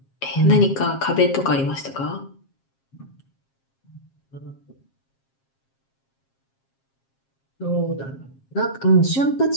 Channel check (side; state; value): right; late; 7.4 ms